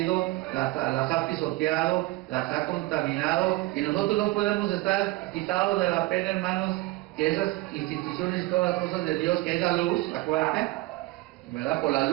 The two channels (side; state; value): left; quieter; 19.7 dB